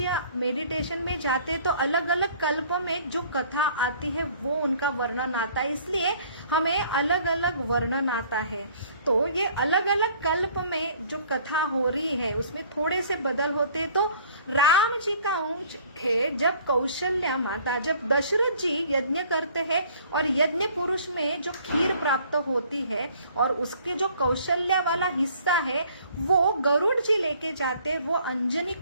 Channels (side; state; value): both; inverted; correlation -0.55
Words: मेडिटेशन में जाते तो अलग अलग कल्प में जो कथा आती है वो उनका वर्णन आता है, इसलिए हमें अलग अलग वर्णन आता है। तो ये अलग अलग कल्प में जो कथा हो रही है उसमें थोड़े से बदल होते। तो राम जी का अंश है जब कौशल्या माता, जब दशरथ जी यज्ञ करते हैं और यज्ञ पुरुष में जो खीर प्राप्त होती है और उसके जो कौशल्या वाला हिस्सा है वो गरुड़ जी लेके जाते, वो अंजनी